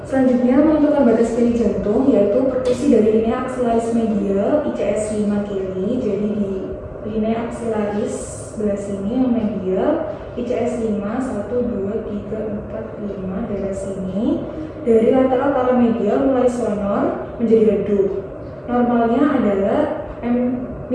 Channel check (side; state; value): both; identical; correlation 1.00